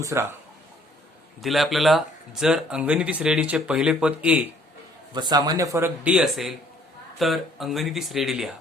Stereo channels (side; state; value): both; normal; correlation 0.60